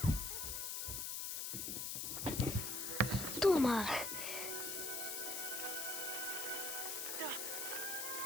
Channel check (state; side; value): noise; left; hiss, 2 dB below the sound